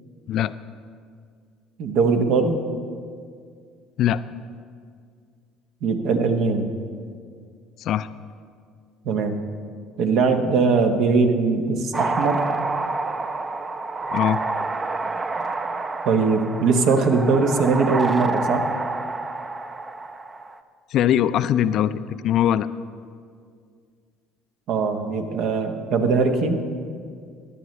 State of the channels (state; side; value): normal; both; correlation 0.51